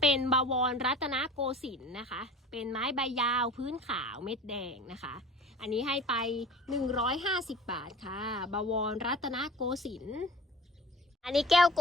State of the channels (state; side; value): normal; both; correlation 0.41